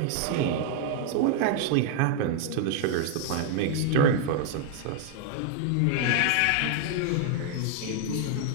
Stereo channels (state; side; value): different; both; correlation 0.00